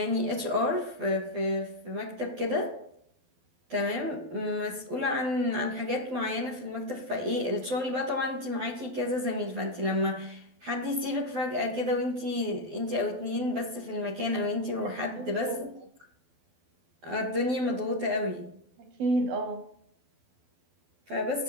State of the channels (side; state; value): left; late; 12 ms